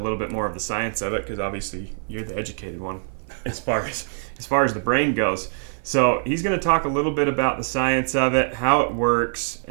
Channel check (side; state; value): left; silent; 55 dB below the other